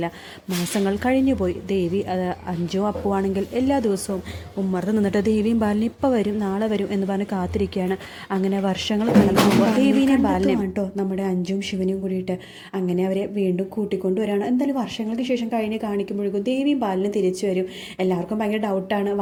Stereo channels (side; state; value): both; identical; correlation 1.00